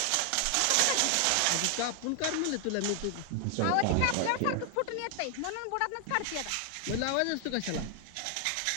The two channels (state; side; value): different; both; correlation 0.00